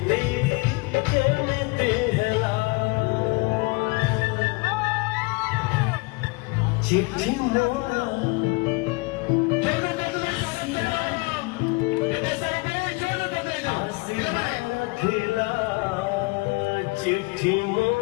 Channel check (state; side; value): quieter; right; 27.1 dB